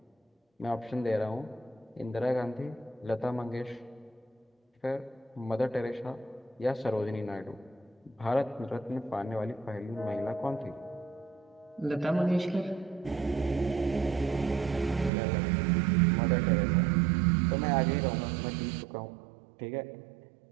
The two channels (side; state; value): left; drops out; at 15.1 s